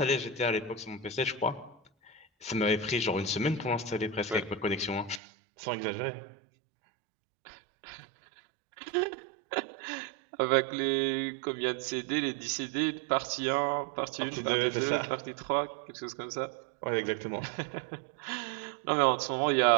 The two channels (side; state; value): left; drops out; at 5.2 s